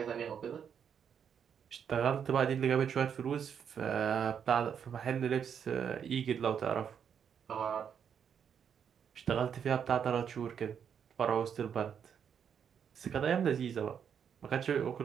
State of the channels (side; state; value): left; quieter; 7.8 dB